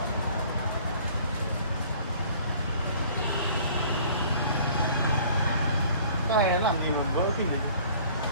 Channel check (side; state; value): both; inverted; correlation -0.52